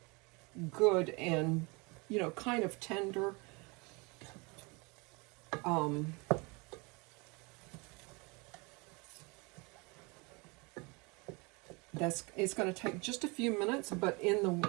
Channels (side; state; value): left; quieter; 28.2 dB